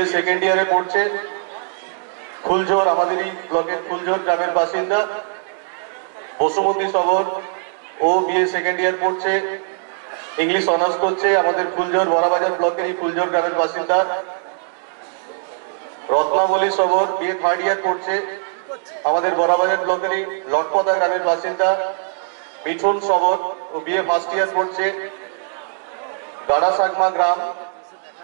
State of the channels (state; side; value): silent; left; 65 dB below the other